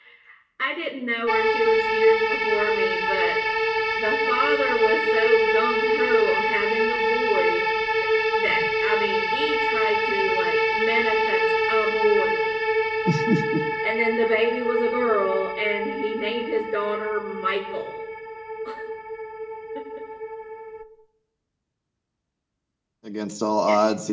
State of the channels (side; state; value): both; identical; correlation 1.00